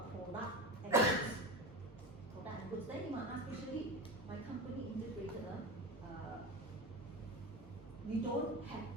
product and goods. Product and goods. Then you might ask, especially my company integrator, we don't have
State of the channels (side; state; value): both; normal; correlation 0.24